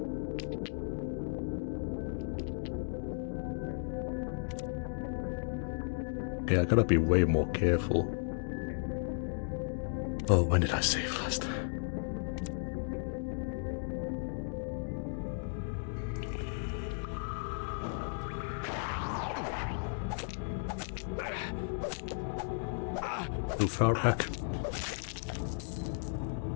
Okay, I gotta be way more careful. Oh, when did I save last? Too far back.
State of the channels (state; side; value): silent; right; digital silence